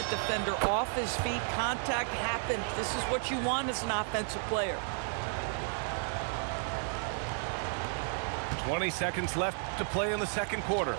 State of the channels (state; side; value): silent; left; 56 dB below the other